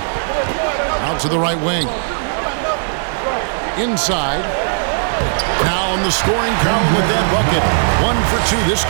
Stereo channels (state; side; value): silent; left; digital silence